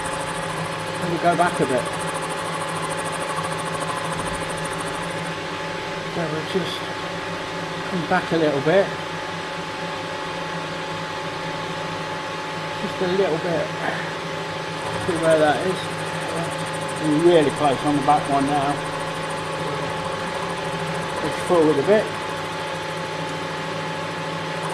we'll go back a bit. So we'll just come back a little bit. Just a little bit. See where that is. We're really close on the back one now. Push forward a bit.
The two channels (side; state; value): both; identical; correlation 1.00